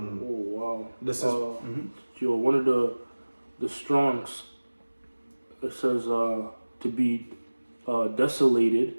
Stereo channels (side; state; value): both; inverted; correlation -1.00